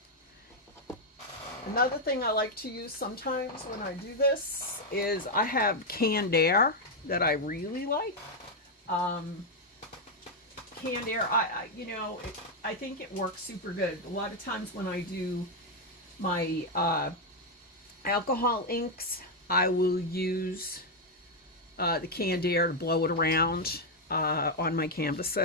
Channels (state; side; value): normal; both; correlation 0.01